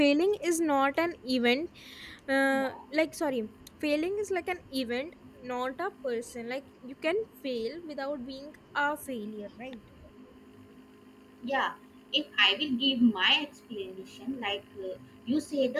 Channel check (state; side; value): identical; both; correlation 1.00